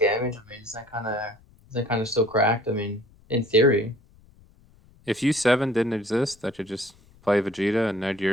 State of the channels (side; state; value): left; noise; rumble, 28 dB below the sound